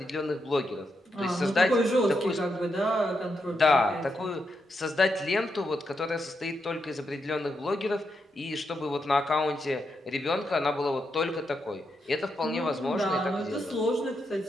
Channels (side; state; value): both; normal; correlation 0.83